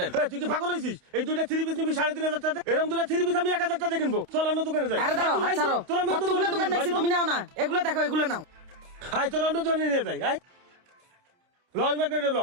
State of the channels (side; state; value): left; late; 29 ms